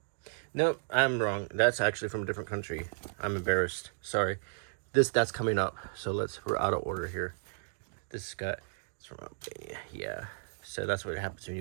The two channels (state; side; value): silent; left; digital silence